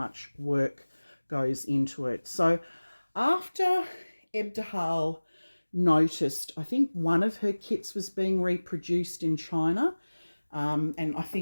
work goes into it. So after Ebtabhal noticed, I think one of her kits was being reproduced in China, and I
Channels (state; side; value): inverted; both; correlation -1.00